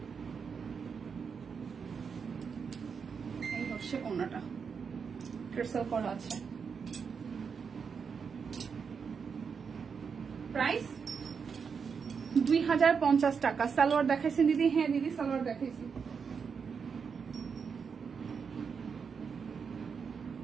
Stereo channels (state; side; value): quieter; left; 6.1 dB